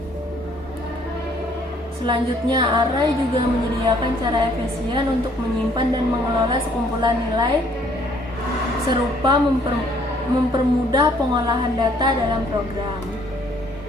Selanjutnya, array juga menyediakan cara efisien untuk menyimpan dan mengelola sekumpulan nilai serupa mempermudah pengolahan data dalam program.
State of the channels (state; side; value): normal; both; correlation 0.62